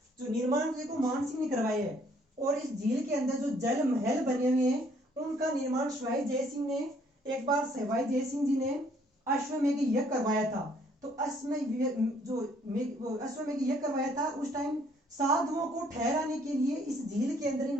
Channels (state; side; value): normal; both; correlation 0.64